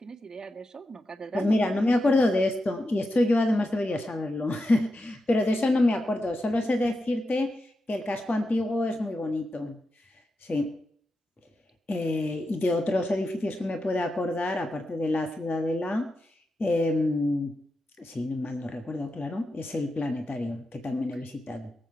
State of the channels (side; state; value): both; normal; correlation 0.88